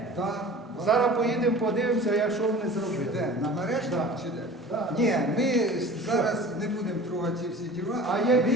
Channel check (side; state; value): both; normal; correlation 0.41